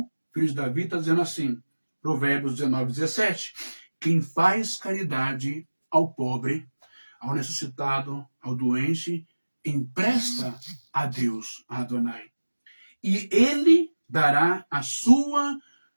filho de Davi, está dizendo assim, Provérbios 19, 17, quem faz caridade ao pobre, ao necessitado, ao doente, empresta a Deus, a Adonai. E ele dará a sua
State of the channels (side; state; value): both; inverted; correlation -1.00